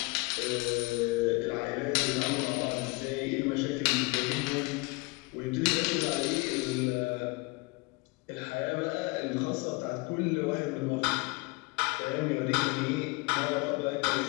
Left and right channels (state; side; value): quieter; right; 26.0 dB